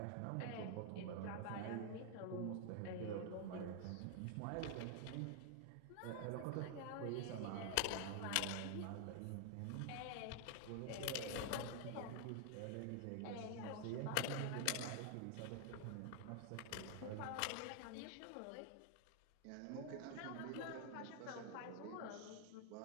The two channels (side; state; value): both; different; correlation 0.00